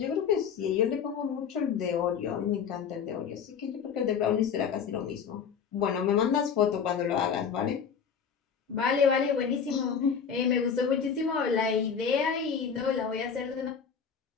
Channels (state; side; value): quieter; right; 6.8 dB